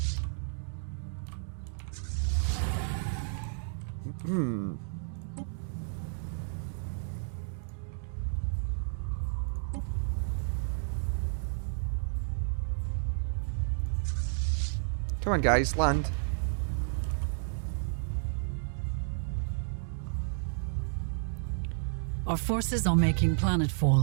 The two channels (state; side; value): silent; left; digital silence